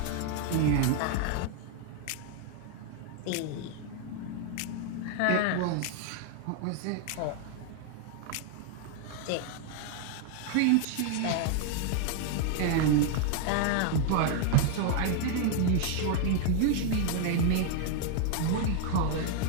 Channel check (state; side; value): different; both; correlation 0.00